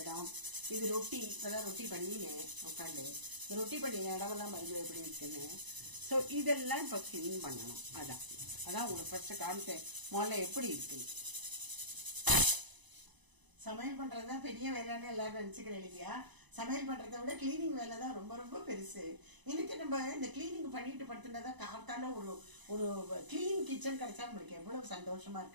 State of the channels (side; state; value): left; late; 1.0 ms